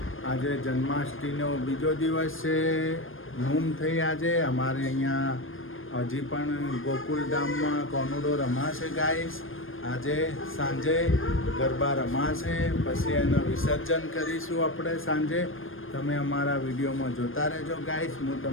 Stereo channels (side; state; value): right; late; 0.59 ms